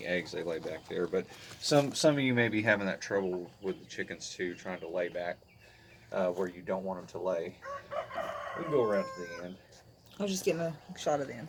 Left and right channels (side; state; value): both; identical; correlation 1.00